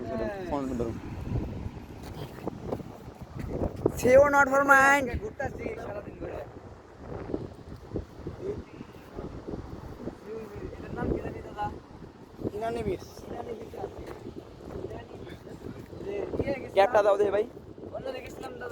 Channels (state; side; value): identical; both; correlation 1.00